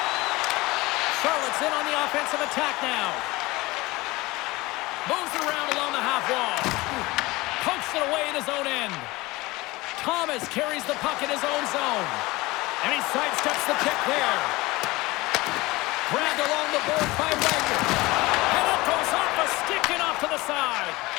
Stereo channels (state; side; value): quieter; right; 21.2 dB